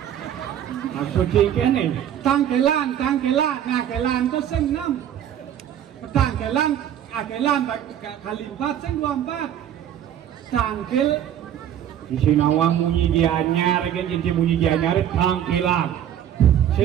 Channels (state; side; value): quieter; left; 10.3 dB